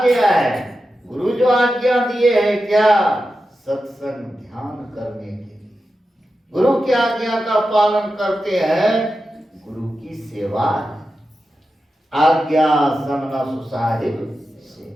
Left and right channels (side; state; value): both; normal; correlation 0.91